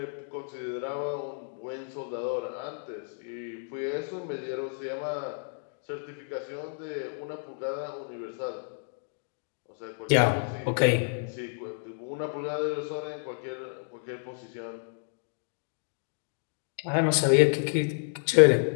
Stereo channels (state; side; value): silent; right; digital silence